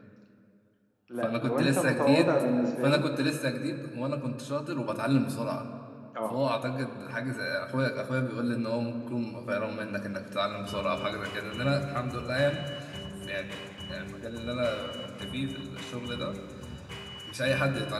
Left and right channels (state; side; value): identical; both; correlation 1.00